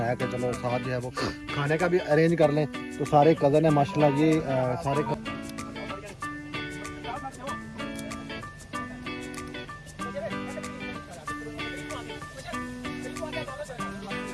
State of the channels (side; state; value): both; identical; correlation 1.00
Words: कि चलो साथ जो है वो खाने का भी अरेंज कर लें। तो सारे कज़न है माशाल्लाह, ये सारे